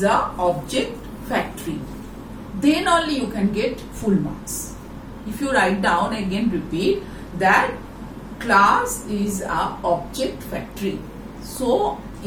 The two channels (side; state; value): both; identical; correlation 1.00